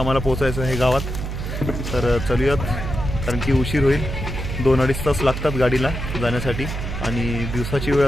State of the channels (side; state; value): right; noise; hum, 5 dB below the sound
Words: पोहोचायचं आहे गावात. तर चलूयात, कारण की उशीर होईल. 2-2.5 तास लागतात गाडीला जाण्यासाठी आणि दिवसाची वेळ